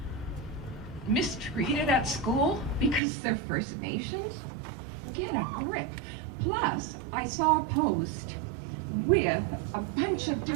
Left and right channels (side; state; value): left; drops out; at 3.0 s